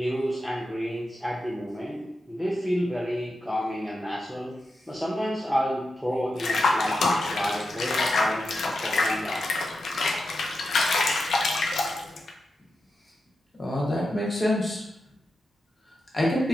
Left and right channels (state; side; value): normal; both; correlation 0.89